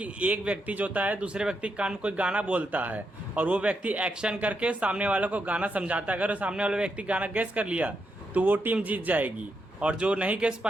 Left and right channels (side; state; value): both; normal; correlation 0.82